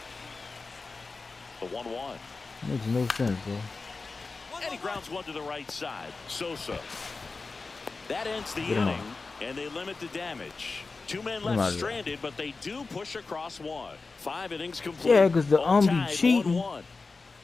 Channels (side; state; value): right; quieter; 4.0 dB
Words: The 1-1. Makes no sense, bro. And he grounds one to the right side. Sosa. That ends the Get him inning, and they limit the damage. 2 men Come left out of there. stranded, but they do push across 1. 5 innings complete. Yeah, 'cause the All be tied, cheating. 1-1.